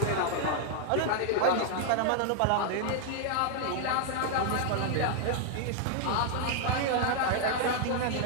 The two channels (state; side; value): different; both; correlation 0.00